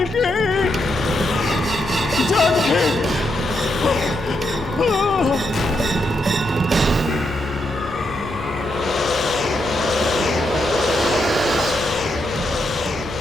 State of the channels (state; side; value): noise; left; hum, 15 dB below the sound